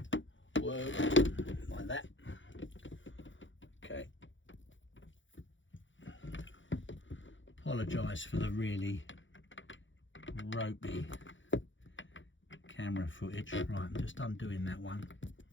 work like that. Okay. Apologise for the really ropey camera footage. Right, I'm just undoing that one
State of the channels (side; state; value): right; late; 0.56 ms